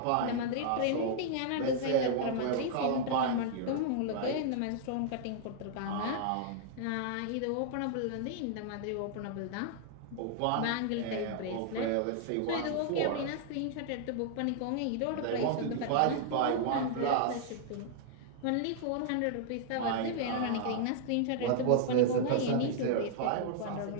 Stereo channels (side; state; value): both; different; correlation -0.01